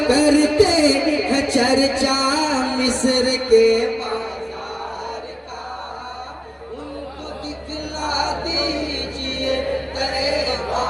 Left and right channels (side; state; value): both; identical; correlation 1.00